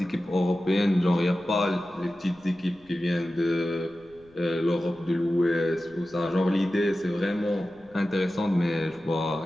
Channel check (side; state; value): left; noise; rumble, 29 dB below the sound